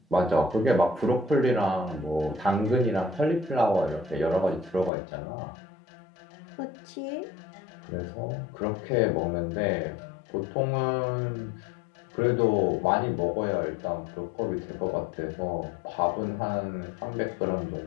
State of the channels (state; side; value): drops out; right; at 4.9 s